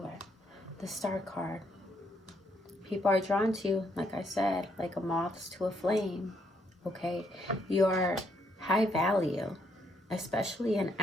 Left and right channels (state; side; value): normal; both; correlation 0.73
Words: The star card. People are drawn to you, like I said, like a moth to a flame. Okay? You're high value, especially in